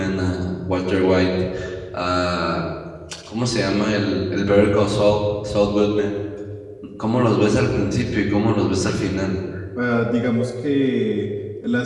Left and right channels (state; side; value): identical; both; correlation 1.00